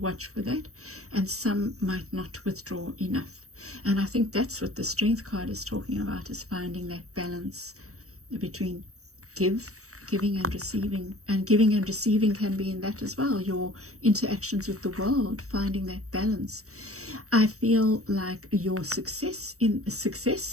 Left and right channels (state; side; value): late; left; 0.65 ms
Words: for that, and some might not withdraw enough. And I think that's what the strength card is talking about, is finding that balance between giving and receiving. And giving and receiving can be in that as well, your interactions with the world, finding that balance. I feel like your success,